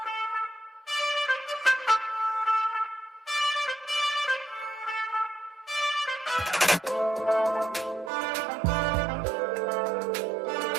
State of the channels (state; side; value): drops out; left; at 8.1 s